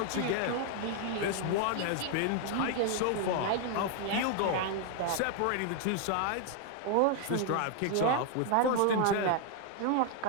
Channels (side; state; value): both; different; correlation 0.00